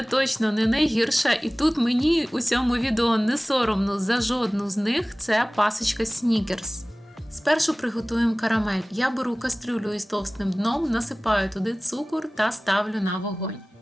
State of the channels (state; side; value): normal; both; correlation 0.98